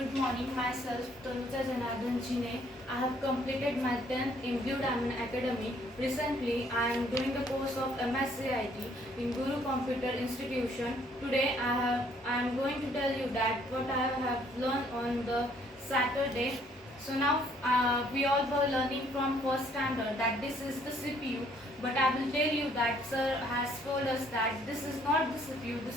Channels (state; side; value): normal; both; correlation 0.64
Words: morning, myself Tanuja Janardhan Jine. I have completed my 10th in Blue Diamond Academy. Recently, I am doing the course of MS-CIT in Guru Computer Institution. Today, I am going to tell you that what I have learned on the Saturday. So now we all were learning from first standard that this is the CPU, but I will tell you that sir has told us that this is not the CPU,